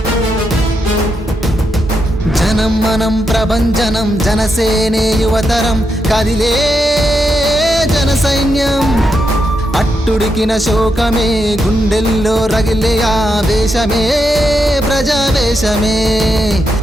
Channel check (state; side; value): normal; both; correlation 0.83